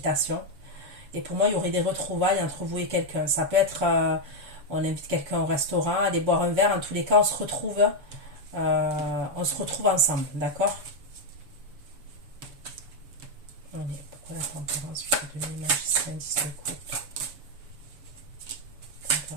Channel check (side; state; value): left; late; 7.0 ms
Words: Et pour moi, il y aurait des retrouvailles entre vous et quelqu'un. Ça peut être, on invite quelqu'un au restaurant, aller boire un verre. En tous les cas, on se retrouve ensemble, d'accord? Pourquoi la tempérance, 8 de demi, magicien, 10 de coupe.